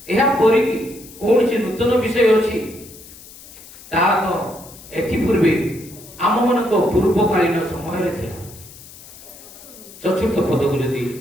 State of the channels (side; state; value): left; noise; hiss, 19 dB below the sound